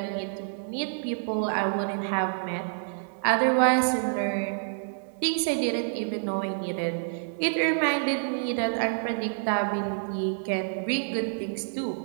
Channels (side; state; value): left; silent; digital silence